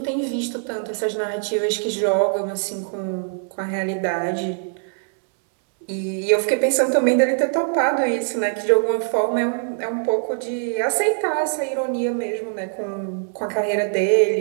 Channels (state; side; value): silent; left; digital silence